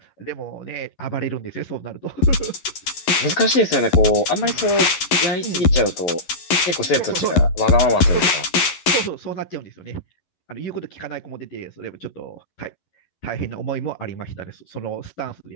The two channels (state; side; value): late; right; 11 ms